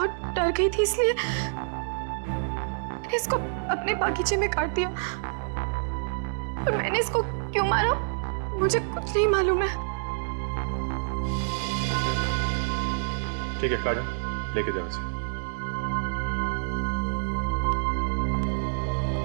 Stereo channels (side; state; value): left; silent; digital silence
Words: डर गई थी, इसलिए मैंने इसको अपने बागीचे में काट दिया। और मैंने इसको क्यों मारा मुझे कुछ नहीं मालूम है। ठीक है काजल, लेके जाओ इसे।